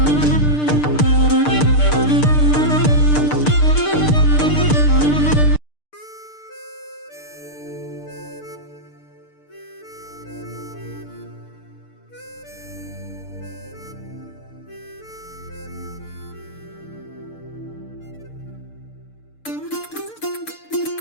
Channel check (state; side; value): late; right; 6.7 ms